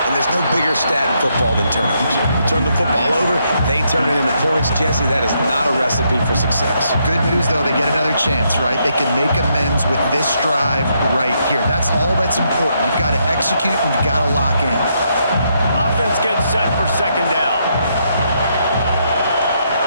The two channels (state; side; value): inverted; both; correlation -0.76